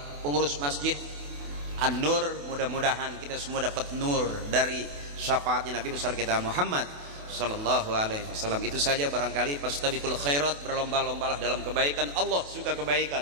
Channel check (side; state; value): left; late; 28 ms